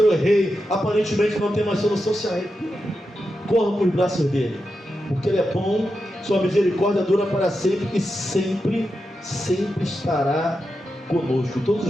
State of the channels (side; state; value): both; normal; correlation 0.88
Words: errei. Aparentemente não tem mais solução. Se arrependa. Corra para os braços dele. Porque Ele é bom. Sua misericórdia dura para sempre. E sempre, sempre estará conosco. Todos